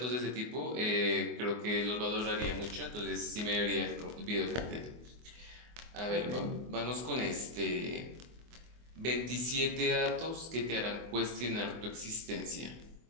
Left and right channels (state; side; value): late; left; 24 ms